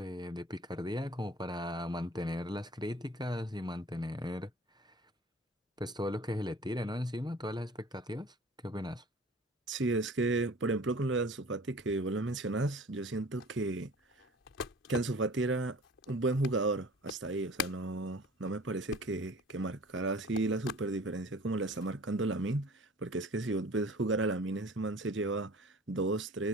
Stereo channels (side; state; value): both; normal; correlation 0.45